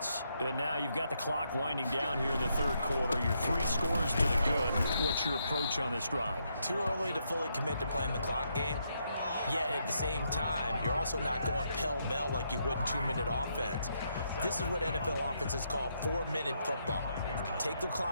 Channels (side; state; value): both; inverted; correlation -0.78